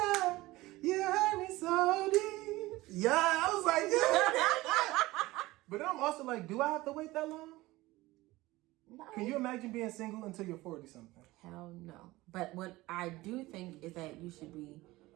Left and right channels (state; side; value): quieter; left; 19.2 dB